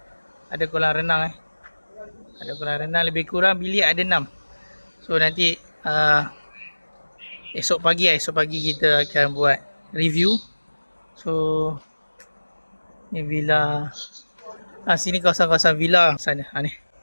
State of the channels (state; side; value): inverted; both; correlation -1.00